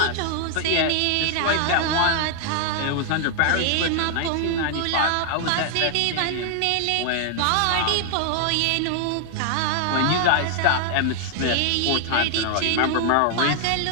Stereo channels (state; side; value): different; both; correlation 0.00